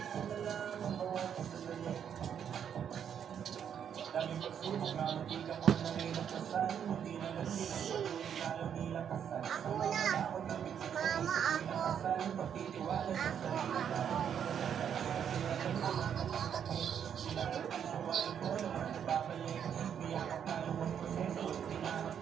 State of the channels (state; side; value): quieter; left; 8.4 dB